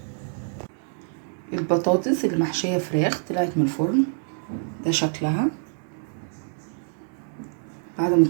البطاطس اللي محشيه فراخ طلعت من الفرن، ده شكلها بعد ما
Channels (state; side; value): silent; left; digital silence